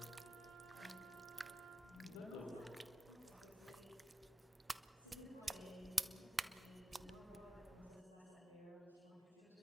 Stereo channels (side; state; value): both; normal; correlation 0.93